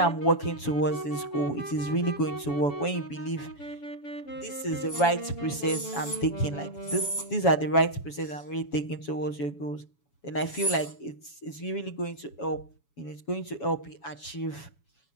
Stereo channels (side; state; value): right; late; 7.1 ms